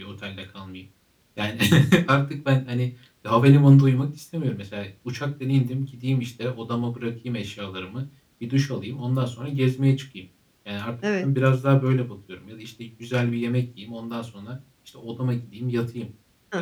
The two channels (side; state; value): both; identical; correlation 1.00